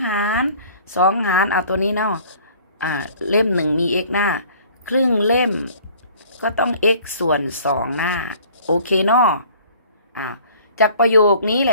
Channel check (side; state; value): both; inverted; correlation -0.52